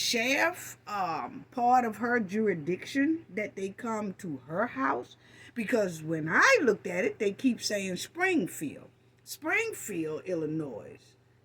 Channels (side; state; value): both; identical; correlation 1.00